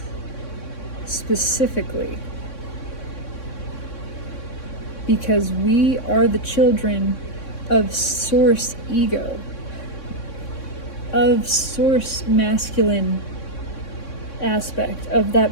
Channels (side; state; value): right; late; 3.6 ms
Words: specifically. Because we are the children of Source ego, of Source masculine aspect, of